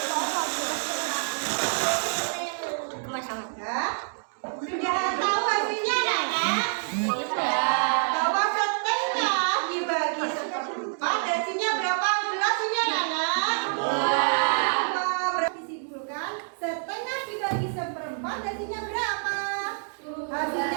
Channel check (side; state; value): left; silent; digital silence